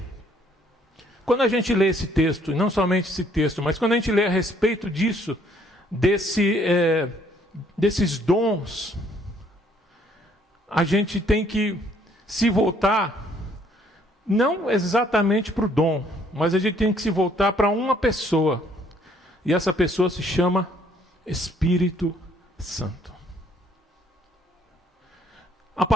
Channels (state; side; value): normal; both; correlation 0.64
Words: quando a gente lê esse texto, e não somente esse texto, mas quando a gente lê a respeito disso, desses dons, a gente tem que se voltar, não exatamente para o dom, mas a gente tem que se voltar para uma pessoa. E essa pessoa se chama Espírito Santo. A